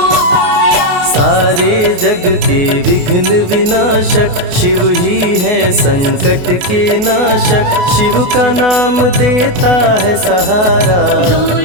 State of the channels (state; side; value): late; left; 28 ms